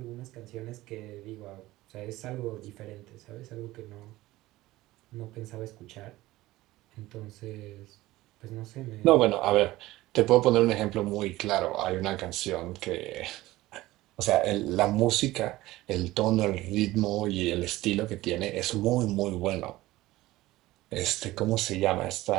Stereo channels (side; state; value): left; quieter; 17.6 dB